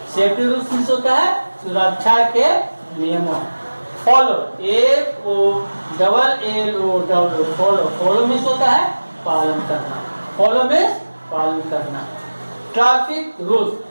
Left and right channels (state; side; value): inverted; both; correlation -1.00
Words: सेफ्टी रूल्स मीन्स होता है सुरक्षा के नियमों। Follow, FOLLOW, follow, follow means होता है पालन करना, फॉलो मीन्स पालन करना। Traffic rules,